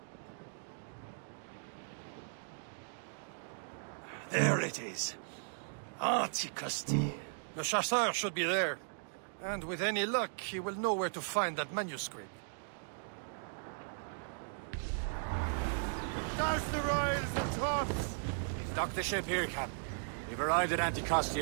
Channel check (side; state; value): left; silent; digital silence